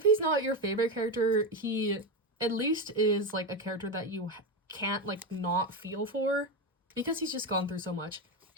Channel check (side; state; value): both; normal; correlation 0.14